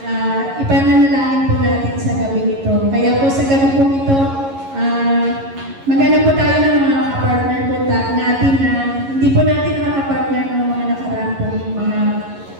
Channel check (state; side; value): late; left; 11 ms